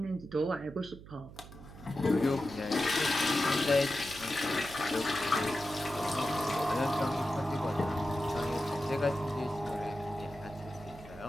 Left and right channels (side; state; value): right; noise; hum, 16 dB below the sound